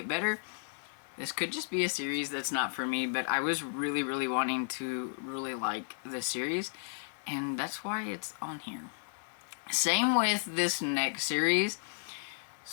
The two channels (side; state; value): right; silent; digital silence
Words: better. This could just be a series that's not for me, but I was really, really wanting to really like this series, and that's why it's on here. Same with this next series.